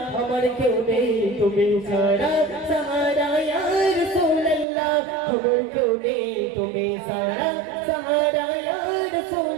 আমার কেউ নেই তুমি ছাড়া সাহারা ইয়া রাসূলুল্লাহ আমার কেউ নেই তুমি ছাড়া সাহারা ইয়া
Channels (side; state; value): left; drops out; at 4.7 s